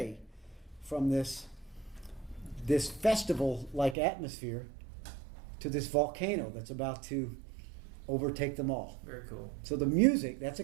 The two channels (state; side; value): drops out; left; at 4.0 s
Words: from this festival-like atmosphere to this volcano that's about to overtake them all. Very cool. So the music, that's a